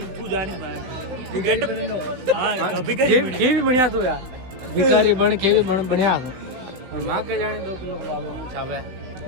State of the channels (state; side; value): late; left; 16 ms